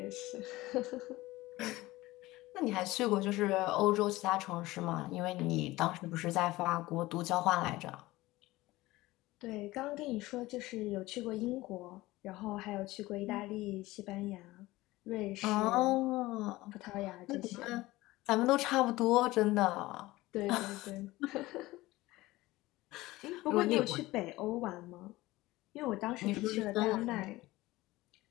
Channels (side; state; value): right; quieter; 18.8 dB